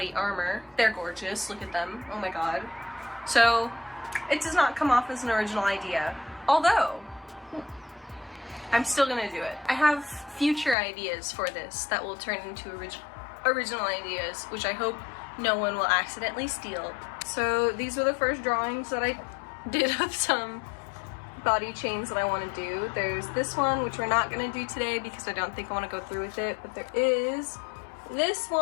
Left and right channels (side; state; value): right; drops out; at 10.8 s